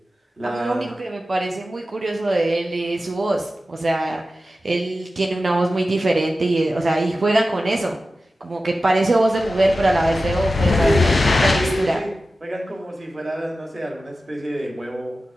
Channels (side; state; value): both; normal; correlation 0.94